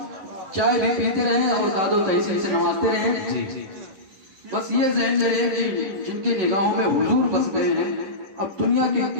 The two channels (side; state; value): left; late; 10 ms